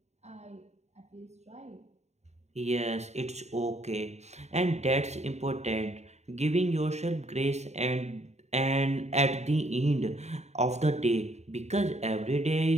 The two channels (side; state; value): left; late; 0.32 ms